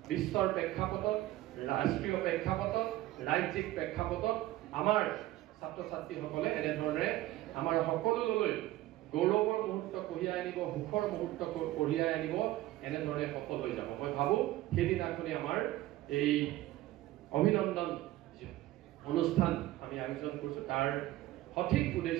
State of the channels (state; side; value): quieter; left; 16.1 dB